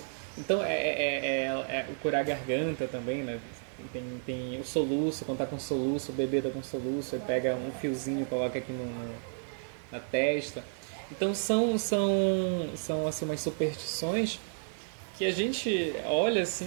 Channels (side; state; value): left; silent; digital silence